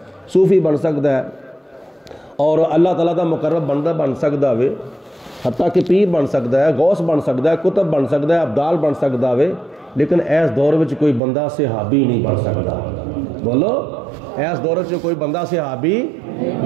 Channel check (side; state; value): left; drops out; at 11.2 s